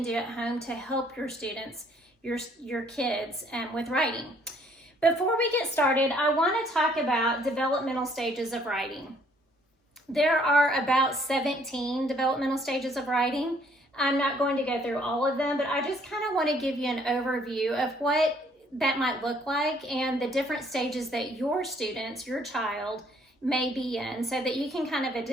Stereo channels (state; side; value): normal; both; correlation 0.63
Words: do at home to help your students, your kids with writing. Before we get started, I want to talk about developmental stages of writing. There are about 17 developmental stages of writing. I'm not going to go through all of them, but I just kind of want to give you an overview of what that might look like and the different stages that your students, your child, may be in so that you can kind of